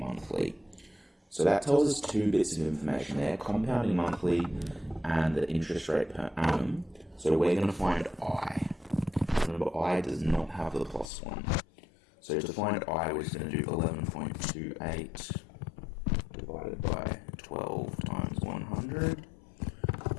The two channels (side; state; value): right; drops out; at 11.1 s